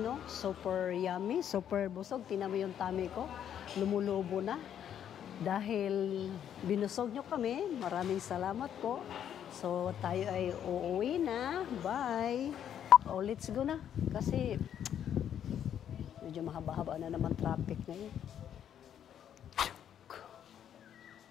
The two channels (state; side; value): quieter; right; 9.5 dB